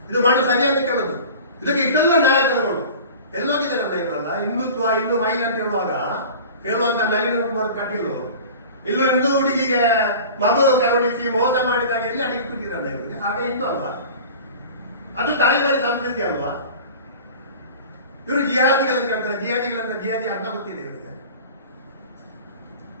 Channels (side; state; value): both; inverted; correlation -0.38